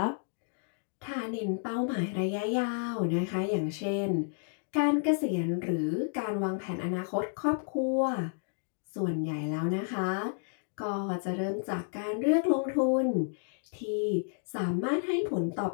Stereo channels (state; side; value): silent; right; digital silence